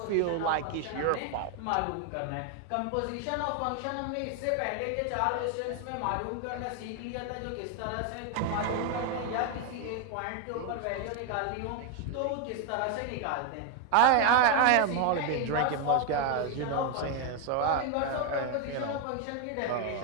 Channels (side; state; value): both; different; correlation 0.01